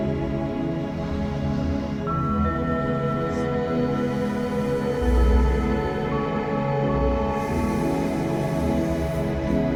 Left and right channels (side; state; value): both; identical; correlation 1.00